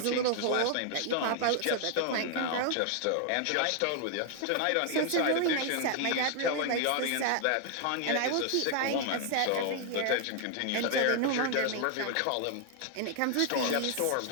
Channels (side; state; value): both; different; correlation 0.00